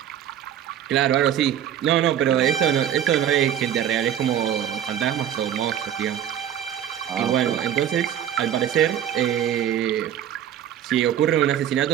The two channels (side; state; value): left; quieter; 10.2 dB